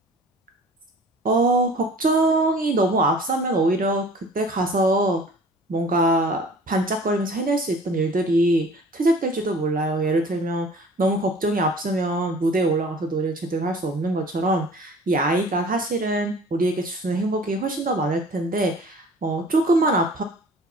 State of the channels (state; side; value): normal; both; correlation 0.47